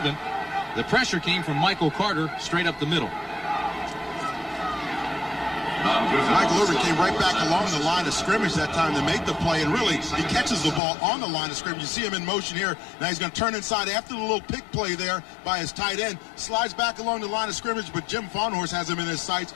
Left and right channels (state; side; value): drops out; right; at 10.8 s